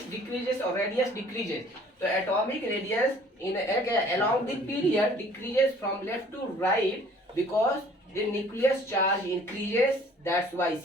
or radius decreases। तो atomic radius in along the period decreases from left to right because the nucleus charge increases। that's why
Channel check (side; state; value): both; normal; correlation 0.54